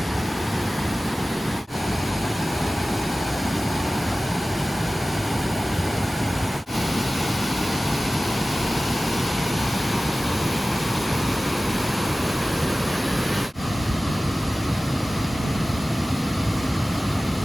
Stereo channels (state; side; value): normal; both; correlation 0.97